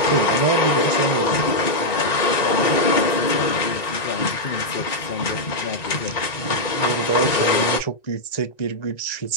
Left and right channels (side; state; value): right; late; 1.9 ms